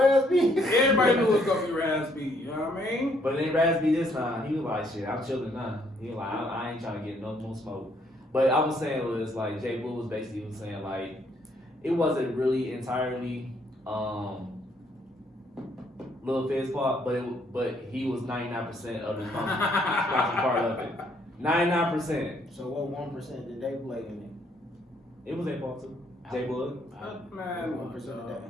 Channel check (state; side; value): normal; both; correlation 0.68